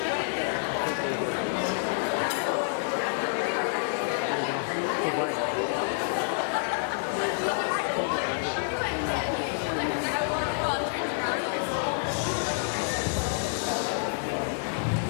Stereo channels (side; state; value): right; silent; 58 dB below the other